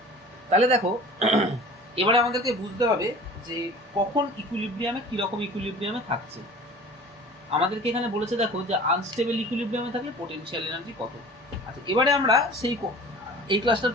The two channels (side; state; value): both; normal; correlation 0.42